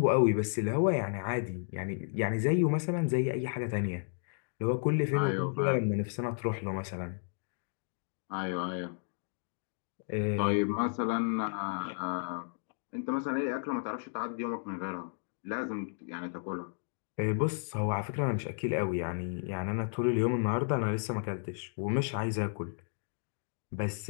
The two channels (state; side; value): silent; right; digital silence